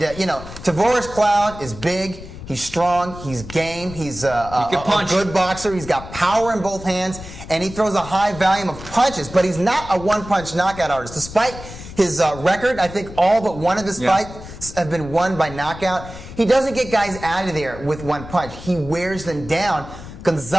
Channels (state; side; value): noise; left; rumble, 13 dB below the sound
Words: Tavoris Cloud is big. He's strong. He's game. He's a good boxer. He's got power in both hands, and he throws a high volume of punches. But he's not a one-punch knockout artist. Despite his record, I think all but one of his fights have been won by knockout. He doesn't get guys out of there with one punch. He wears them down.